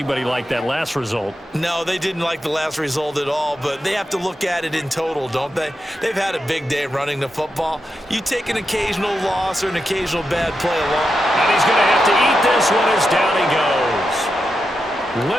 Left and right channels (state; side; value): normal; both; correlation 0.87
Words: liked that last result. No, they didn't like the last result at all, but they have to look at it in total, don't they? They've had a big day running the football. You take an occasional loss or an occasional bad play along. And he's going to have to eat this one as down he goes.